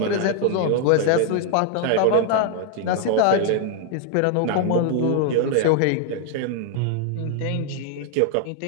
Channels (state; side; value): different; both; correlation 0.00